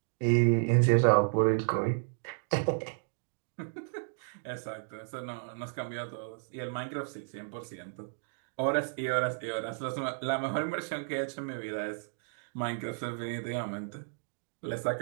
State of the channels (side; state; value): left; silent; digital silence